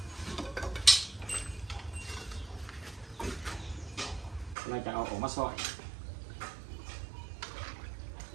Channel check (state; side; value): drops out; left; at 4.5 s